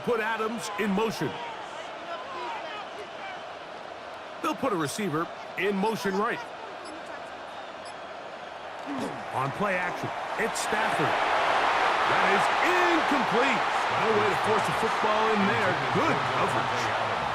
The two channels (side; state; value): both; identical; correlation 1.00